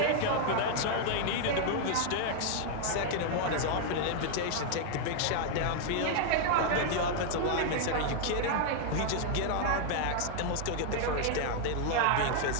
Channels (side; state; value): both; different; correlation 0.00